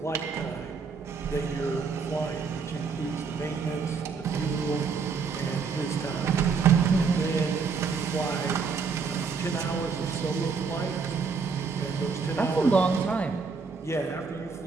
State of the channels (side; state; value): left; quieter; 5.3 dB